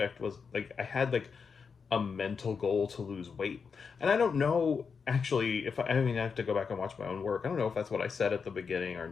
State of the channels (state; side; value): quieter; right; 5.7 dB